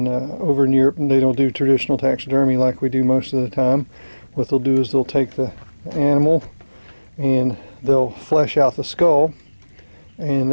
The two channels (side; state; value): both; inverted; correlation -1.00